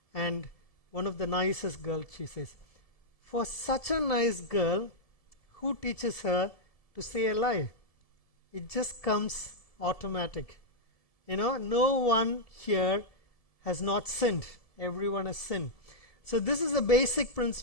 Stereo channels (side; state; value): right; late; 1.7 ms